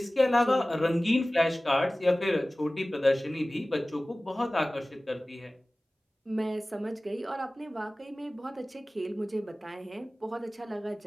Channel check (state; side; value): normal; both; correlation 0.98